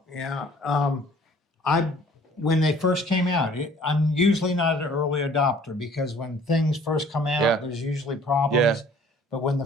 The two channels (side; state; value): both; normal; correlation 0.54